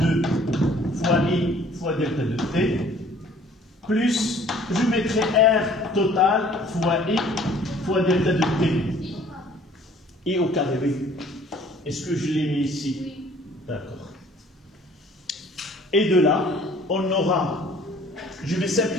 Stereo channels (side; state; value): both; normal; correlation 0.54